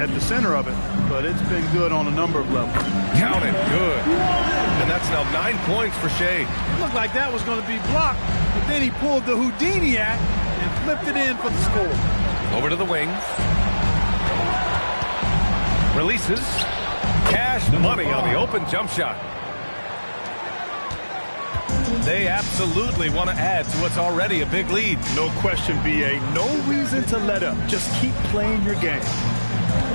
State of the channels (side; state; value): both; inverted; correlation -1.00